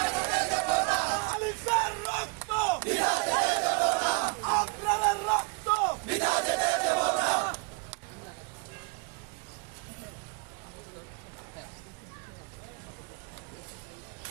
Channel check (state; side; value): quieter; left; 30.3 dB